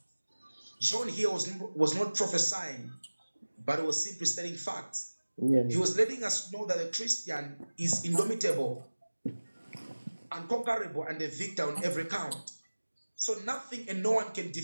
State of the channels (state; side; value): inverted; both; correlation -1.00